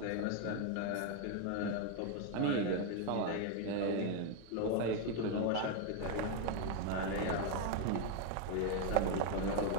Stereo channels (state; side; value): different; both; correlation 0.01